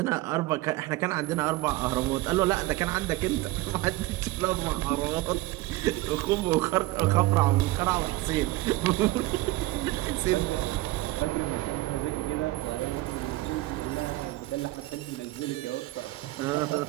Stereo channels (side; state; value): left; quieter; 18.5 dB